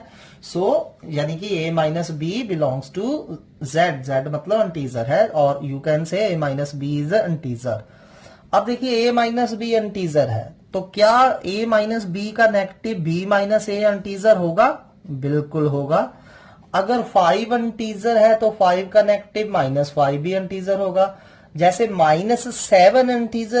सो यानी कि a minus B belongs to z, z मतलब इंटीजर है, और you can say a minus B is integer. अब देखिए a माइनस बी इंटीजर है, तो क्या a माइनस बी का negative b minus a integer होगा? बिल्कुल होगा। अगर 5 इंटीजर है तो 5 का नेगेटिव -5 भी इंटीजर होगा। जैसे -7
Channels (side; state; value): both; identical; correlation 1.00